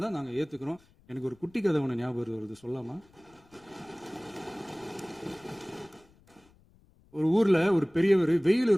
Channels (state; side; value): noise; left; rumble, 30 dB below the sound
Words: நாங்க ஏத்துக்கிறோம். எனக்கு ஒரு குட்டி கதை ஒன்று ஞாபகம் வருது, சொல்லாமா? ஒரு ஊர்ல ஒரு பெரியவர் வெயில்